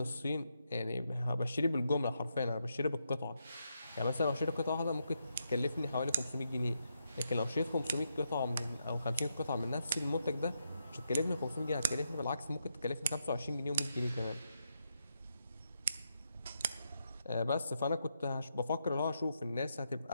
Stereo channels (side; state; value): both; inverted; correlation -0.82